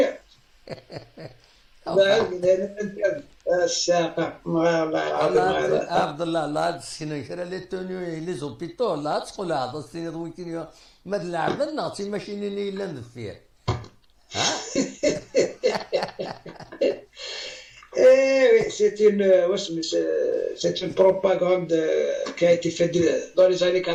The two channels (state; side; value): identical; both; correlation 1.00